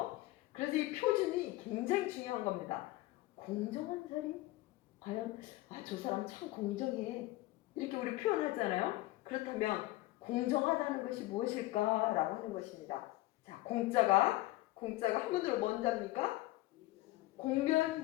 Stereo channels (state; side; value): quieter; right; 18.0 dB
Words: 그래서 이 표준이 굉장히 중요한 겁니다. 공정한 자리? 과연 저 사람 참 공정해, 이렇게 우리 표현하잖아요. 그렇다면 공정하다는 것이 무엇일까라고 하는 것입니다. 자, 공자가 한문으로 뭔 자입니까?